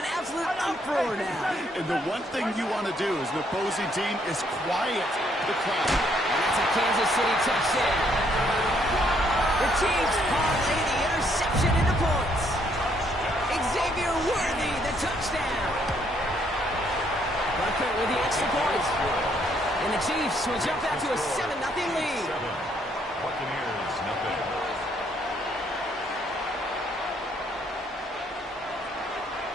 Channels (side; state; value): both; normal; correlation 0.69